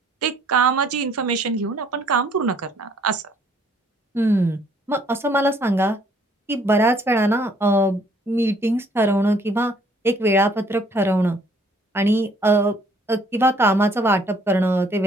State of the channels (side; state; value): both; normal; correlation 0.62